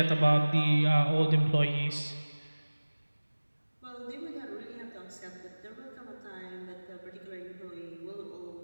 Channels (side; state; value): both; inverted; correlation -1.00